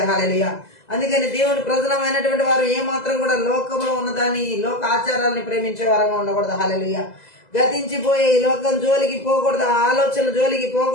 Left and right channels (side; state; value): right; late; 2.0 ms